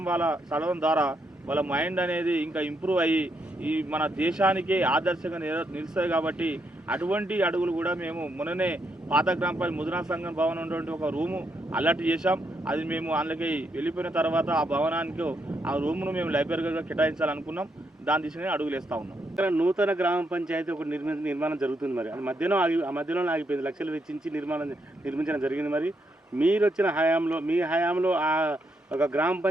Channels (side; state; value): both; normal; correlation 0.78